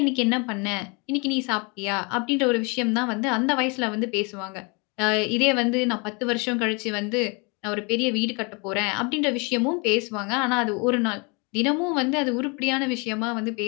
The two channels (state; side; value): quieter; right; 31.3 dB